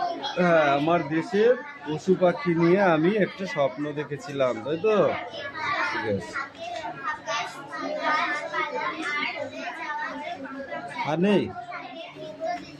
হ্যাঁ, আমার দেশের পশু পাখি নিয়ে আমি একটা স্বপ্ন দেখেছিলাম, তাই তো? ঠিক আছে। আর নেই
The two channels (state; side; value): identical; both; correlation 1.00